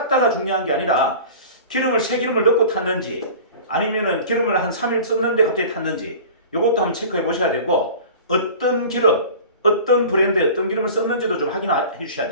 중요한 게 아니라 기름을 새 기름을 넣고 탔는지 아니면은 기름을 한 3일 썼는데 갑자기 탔는지 이것도 한번 체크해 보셔야 되고 어떤 기름, 어떤 브랜드의 어떤 기름을 썼는지도 좀 확인해 주셔야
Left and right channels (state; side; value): inverted; both; correlation -0.39